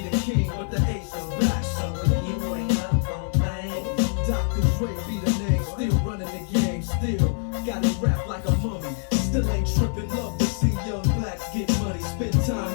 the king, but the ace is back. So if you ain't up on things, Dr. Dre be the name, still running the game, still got it wrapped like a mummy. Still ain't tripping, love to see young blacks get money. Spend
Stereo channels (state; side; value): silent; right; 59 dB below the other